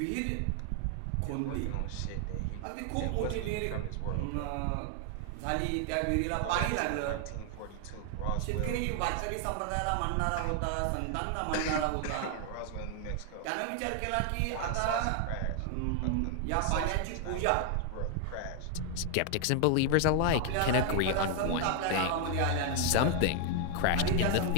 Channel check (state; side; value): different; both; correlation 0.00